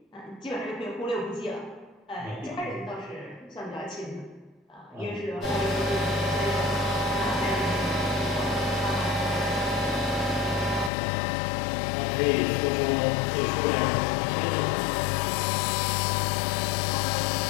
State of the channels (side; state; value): right; drops out; at 10.9 s